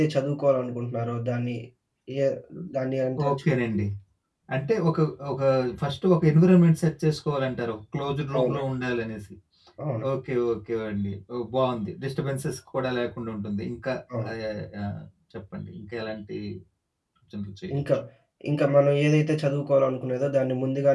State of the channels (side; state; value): both; identical; correlation 1.00